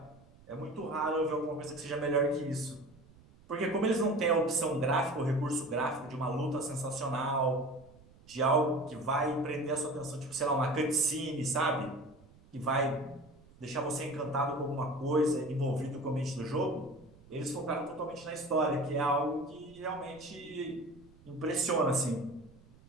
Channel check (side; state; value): right; noise; rumble, 25 dB below the sound